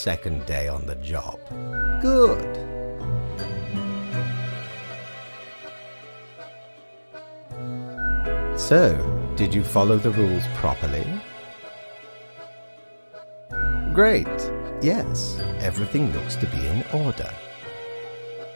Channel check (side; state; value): both; inverted; correlation -1.00